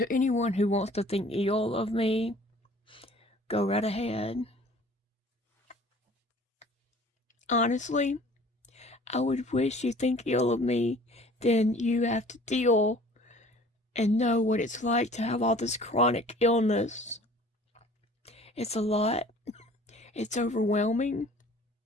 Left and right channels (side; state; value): both; normal; correlation 0.50